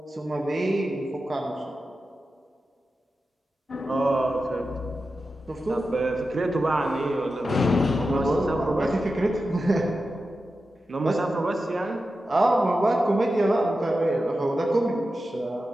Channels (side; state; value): both; normal; correlation 0.91